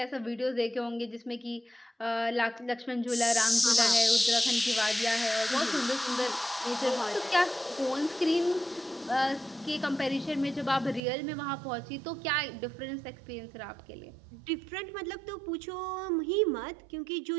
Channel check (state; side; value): drops out; left; at 11.0 s